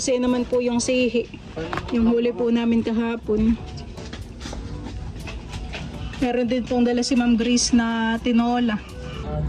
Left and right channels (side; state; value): both; identical; correlation 1.00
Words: naman po yung sihi. Yung huli po namin kahapon. Meron din pong dala si Ma'am Grace na tinola.